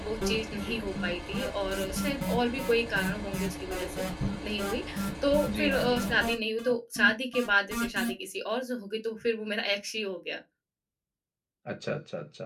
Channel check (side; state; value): both; identical; correlation 1.00